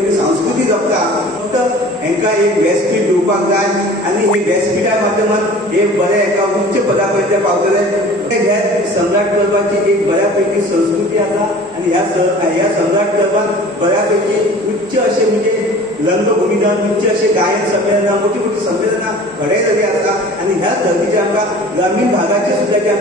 संस्कृती जपता. फक्त हांकां एक व्यासपीठ दिवपाक जाय आणि हे व्यासपीठा माध्यमात एक बरे एका उच्च पदापर्यंत पावतले. हे सम्राट क्लबाची एक बऱ्यापैकी संस्कृती आसा आणि ह्या सम्राट क्लबान बऱ्यापैकी उच्च असे म्हणजे रंगभूमीदान, उच्च असे गायन संमेलनां, मोठी मोठी संमेलनां घडयलेली आसा आणि ह्या धर्तीचे आमकां ग्रामीण भागाचे सुद्धा जे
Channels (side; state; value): both; normal; correlation 0.44